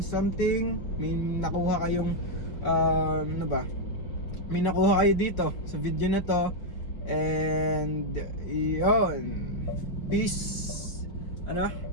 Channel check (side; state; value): right; late; 4.9 ms